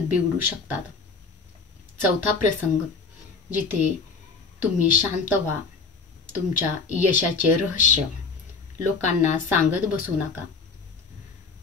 बिघडू शकतात। चौथा प्रसंग जिथे तुम्ही शांत व्हा। तुमच्या यशाचे रहस्य लोकांना सांगत बसू नका।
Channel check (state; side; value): quieter; right; 4.6 dB